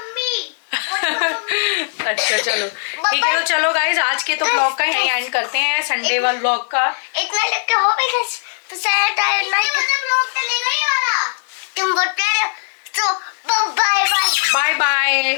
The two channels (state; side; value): silent; right; 67 dB below the other